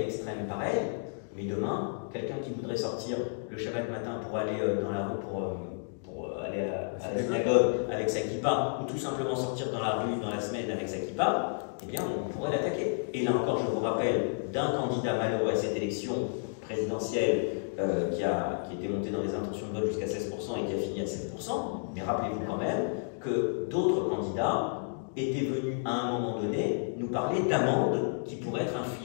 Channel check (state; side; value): silent; right; digital silence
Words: extrême pareille, mais demain, quelqu'un qui voudrait sortir le Shabbat matin pour aller dans la rue, pour aller à la synagogue avec sa kippa, ou tout simplement sortir dans la rue dans la semaine avec sa kippa, eh bien on pourrait l'attaquer. Et là encore, je vous rappelle d'un candidat malheureux à cette élection présidentielle qui était monté dans les intentions de vote jusqu'à 16% et qui a fini à 7%, mais rappelez-vous quand même que d'autres candidats étaient venus à un moment donné nous parler d'amendes qui pourraient être